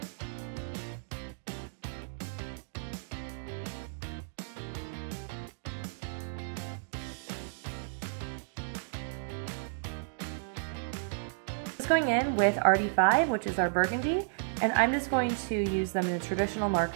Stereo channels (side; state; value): left; silent; digital silence